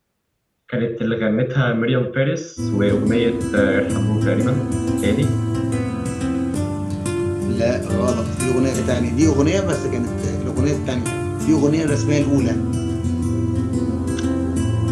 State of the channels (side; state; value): both; identical; correlation 1.00